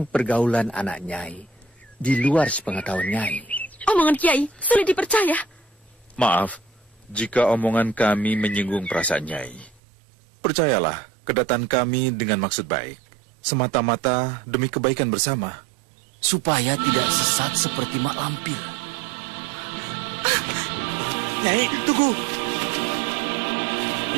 pergaulan anak Nyai di luar sepengetahuan Nyai. Omongan Kiai sulit dipercaya. Maaf, jika omongan kami menyinggung perasaan Nyai. Percayalah, kedatangan kami dengan maksud baik. Semata-mata demi kebaikan bersama. Supaya tidak sesat seperti Mak Lampir. Nyai, tunggu.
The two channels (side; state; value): left; drops out; at 9.8 s